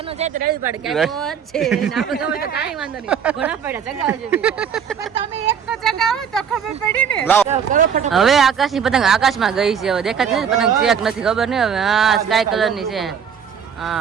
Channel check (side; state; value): left; quieter; 7.5 dB